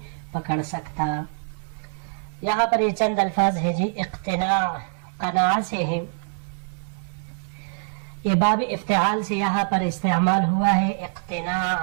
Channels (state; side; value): silent; left; 61 dB below the other